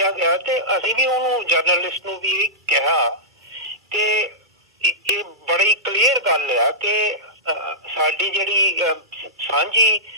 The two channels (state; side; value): normal; both; correlation -0.15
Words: ਗਿਆ ਤੇ ਅਸੀਂ ਵੀ ਉਹਨੂੰ ਜਰਨਲਿਸਟ ਨੂੰ ਵੀ ਕਿਹਾ ਕਿ ਇਹ ਬੜੀ ਕਲੀਅਰ ਗੱਲ ਆ ਕਿ ਸਾਡੀ ਜਿਹੜੀ ਸਾਂਝੀ